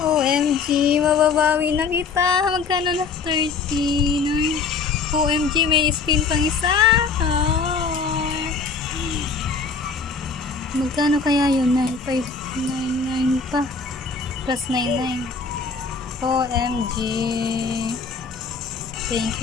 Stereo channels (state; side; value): quieter; right; 5.0 dB